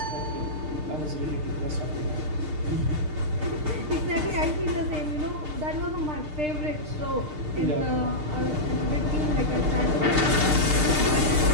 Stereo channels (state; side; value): late; left; 6.6 ms